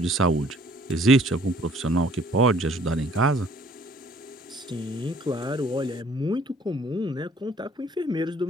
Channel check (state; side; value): normal; both; correlation 0.58